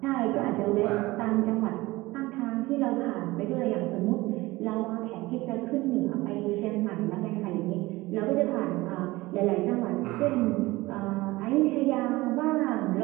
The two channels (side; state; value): left; quieter; 20.0 dB